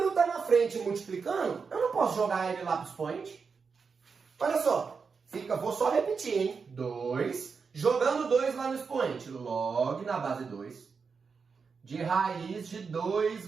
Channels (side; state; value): left; quieter; 5.4 dB